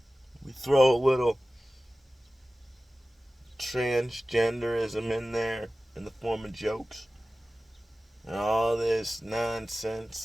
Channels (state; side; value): normal; both; correlation 0.96